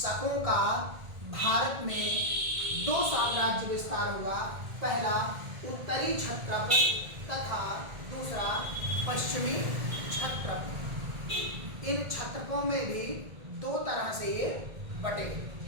का भारत में 2 साम्राज्य विस्तार हुआ, पहला उत्तरी क्षत्रप तथा दूसरा पश्चिमी क्षत्रप। इन क्षत्रपों में भी 2 तरह से ये बटे,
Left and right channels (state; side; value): late; left; 1.8 ms